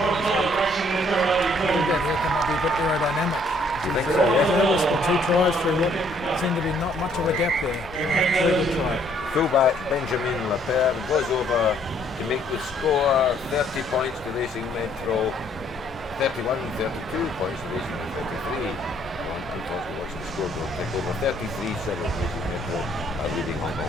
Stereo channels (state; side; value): normal; both; correlation 0.65